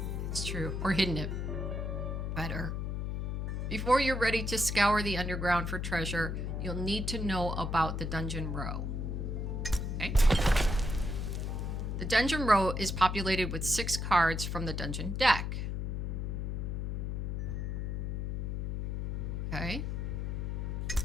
It's true. Or hidden it better. Before you're ready to scour the underground for treasure, you'll need to know about the dungeon row. Okay. The dungeon row is populated with 6 cards from the dungeon deck. Okay.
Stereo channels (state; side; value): noise; left; hum, 2 dB below the sound